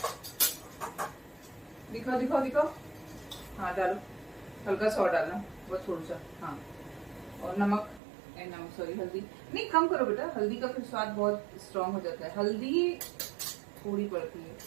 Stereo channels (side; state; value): left; drops out; at 8.0 s